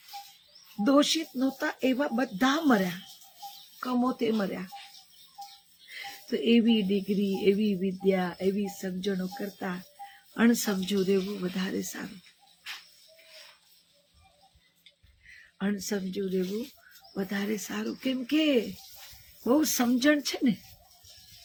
દોષિત નહોતા એવા બધા મર્યા, કમોતે મર્યા. તો એવી ડિગ્રી, એવી વિદ્યા, એવી સમજણો કરતા અણસમજુ રહેવું વધારે સારું. અણસમજુ રહેવું વધારે સારું. કેમ કે બહુ સમજણ છે ને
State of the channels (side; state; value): both; identical; correlation 1.00